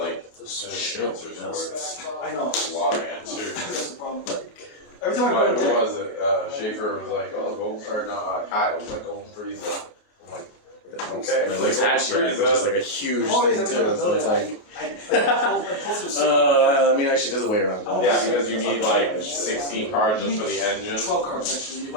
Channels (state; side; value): late; right; 28 ms